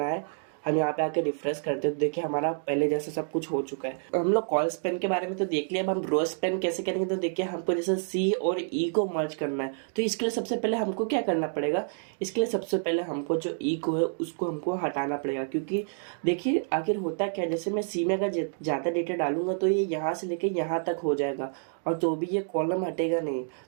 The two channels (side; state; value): left; silent; digital silence